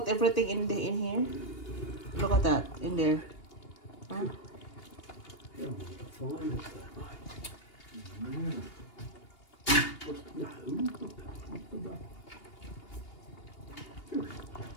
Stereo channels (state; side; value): late; right; 2.8 ms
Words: everything in here. Look at that in there. Huh?